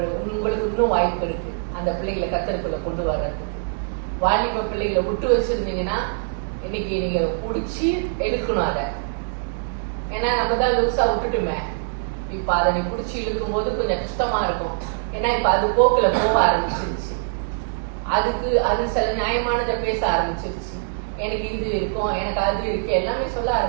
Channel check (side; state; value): left; silent; digital silence